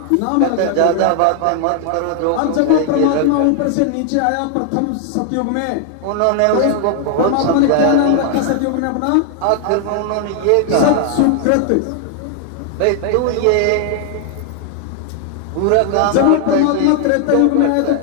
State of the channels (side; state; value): both; different; correlation 0.00